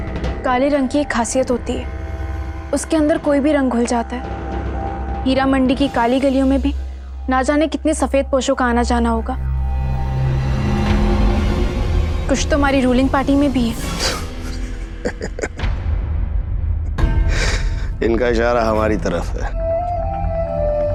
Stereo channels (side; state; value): both; identical; correlation 1.00